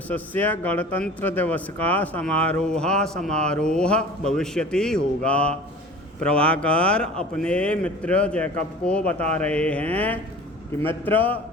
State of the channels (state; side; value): normal; both; correlation 0.41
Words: दिवस का समारोह भविष्यति होगा। प्रभाकर अपने मित्र जैकब को बता रहे हैं कि मित्र